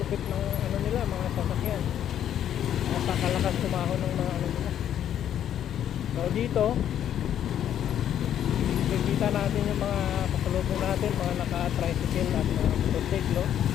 ng nila, mga sasakyan. Napakalakas tumahon ng mga nila. So dito nakikita natin yung mga pasalubong natin, mga naka-tricycle at mga motorsiklo.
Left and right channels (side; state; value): right; quieter; 10.2 dB